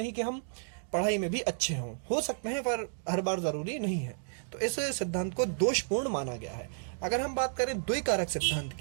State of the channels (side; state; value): left; silent; digital silence